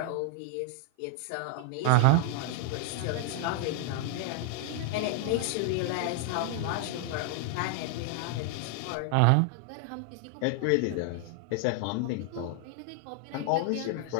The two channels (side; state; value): both; different; correlation 0.00